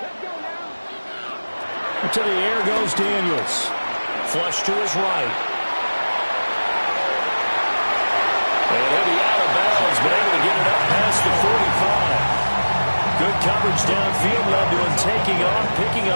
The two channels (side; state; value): both; inverted; correlation -1.00